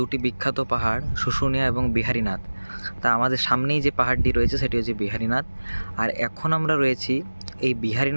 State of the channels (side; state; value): both; inverted; correlation -1.00